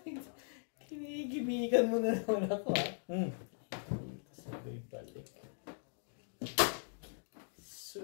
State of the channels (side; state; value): right; silent; digital silence